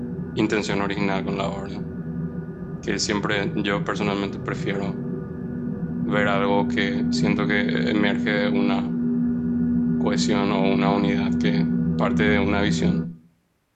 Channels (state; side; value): identical; both; correlation 1.00